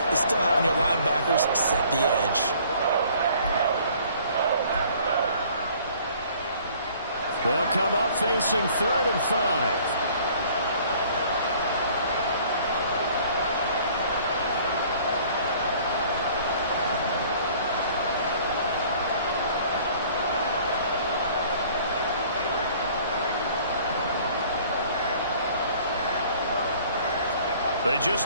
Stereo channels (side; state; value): both; inverted; correlation -0.54